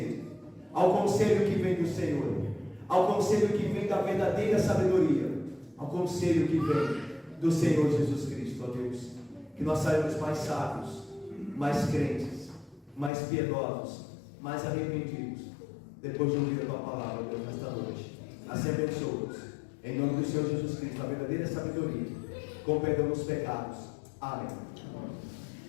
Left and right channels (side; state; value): right; drops out; at 13.1 s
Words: que vem do Senhor, ao conselho que vem da verdadeira sabedoria, ao conselho que vem do Senhor Jesus Cristo. Ó Deus, que nós saímos mais sábios, mais crentes, mais piedosos, mais arrependidos, depois de ouvir a tua palavra, Deus, nesta noite. Assim abençoa-nos, em nome do Senhor Jesus Cristo, a verdadeira sabedoria, com perdão dos pecados. Amém.